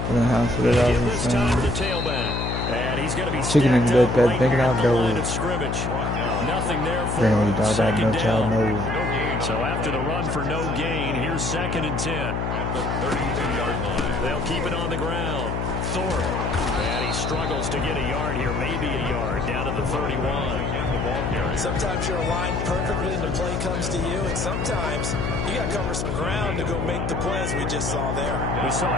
The house of the This time for the tailback. And he's going to be chicken in the bed, right thinking out the line gold. of scrimmage. Nothing there for Family dog, that no second child down. knows. So after the run for no gain, here's 2nd and 10. At the 32-yard line. They'll keep it on the ground. Thorpe. And he struggles to get a yard here, maybe a yard, down to the 31. Sometimes you're aligned perfectly and the play comes to you, and sometimes you got to cover some ground to go make the plays we just saw there. We saw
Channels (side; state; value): left; noise; hum, 1 dB below the sound